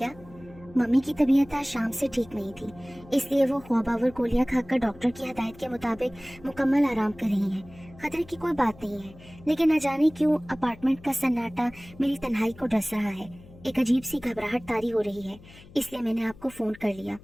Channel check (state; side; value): noise; left; hum, 21 dB below the sound